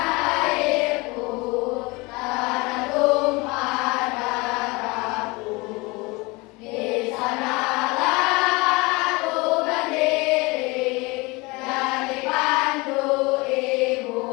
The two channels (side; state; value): right; quieter; 25.1 dB